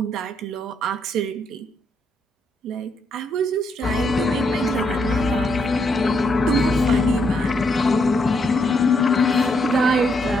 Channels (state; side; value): normal; both; correlation 0.76